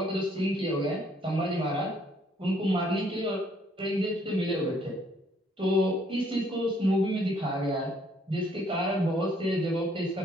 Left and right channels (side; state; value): both; normal; correlation 0.65